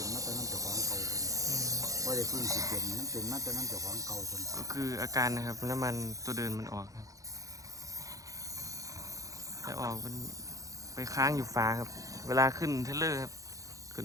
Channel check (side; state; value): left; late; 0.16 ms